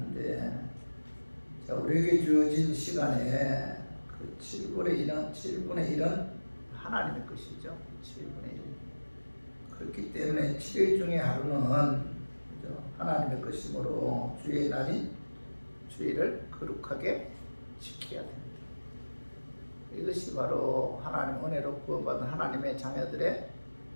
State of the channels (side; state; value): both; inverted; correlation -1.00